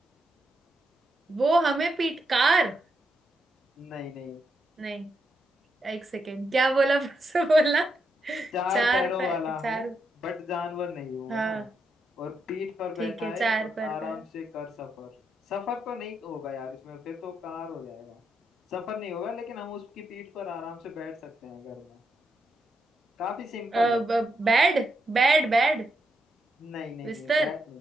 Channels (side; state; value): both; normal; correlation 0.82